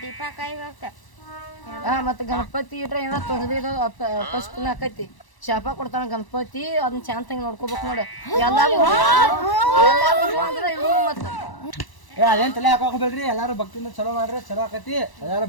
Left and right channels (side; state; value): right; late; 1.0 ms